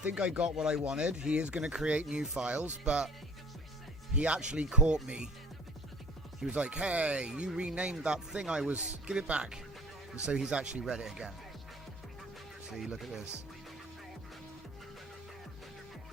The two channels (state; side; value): normal; both; correlation 0.48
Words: I got what I wanted. He is going to create new files, but he actually caught me. He was like, hey, you renamed that thing give it back. And so he's actually read it again. See, look at this.